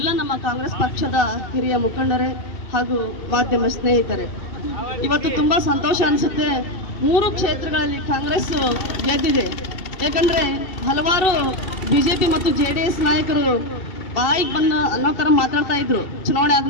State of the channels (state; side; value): late; right; 2.7 ms